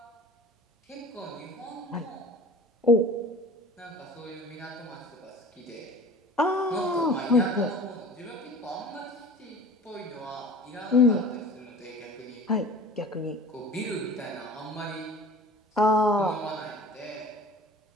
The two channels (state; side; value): normal; both; correlation 0.41